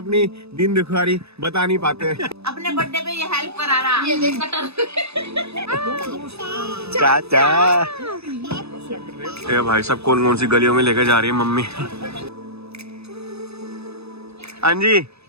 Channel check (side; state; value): left; late; 0.79 ms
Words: दिन दुखियारी बता नहीं पाते। अपने बर्थडे पे ये हेल्प करा रहा। ये देख कटर। चाचा ये भाई सब कौन कौन सी गलियों में लेकर जा रही है मम्मी। हाँ जी